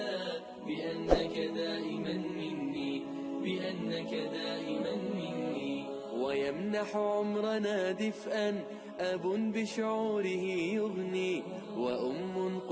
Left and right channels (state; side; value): identical; both; correlation 1.00